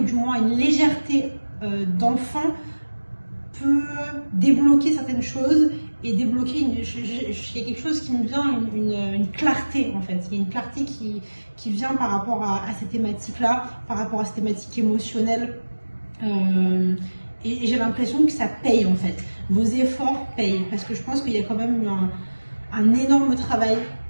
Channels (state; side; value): inverted; both; correlation -1.00